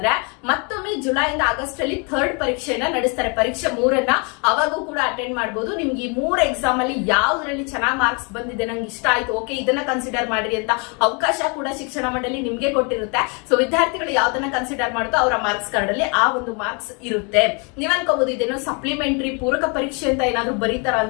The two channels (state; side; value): quieter; right; 33.9 dB